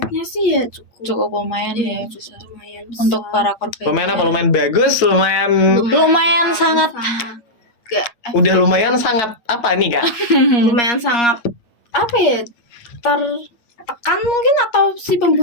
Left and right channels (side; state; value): right; late; 8.4 ms